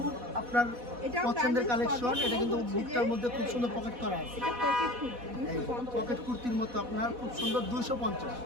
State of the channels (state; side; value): late; left; 4.1 ms